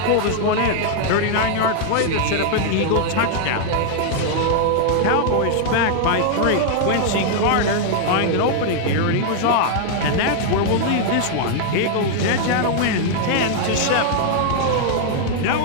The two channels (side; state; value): both; different; correlation 0.00